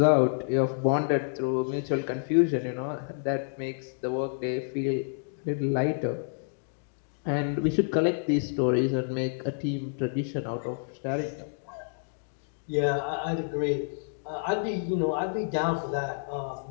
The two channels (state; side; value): silent; right; digital silence